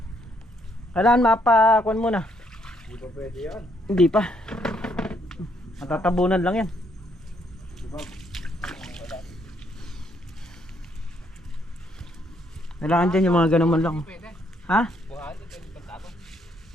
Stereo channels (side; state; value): both; normal; correlation 0.71